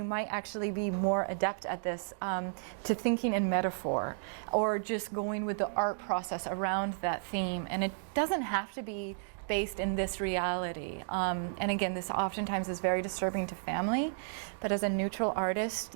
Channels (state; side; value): silent; left; digital silence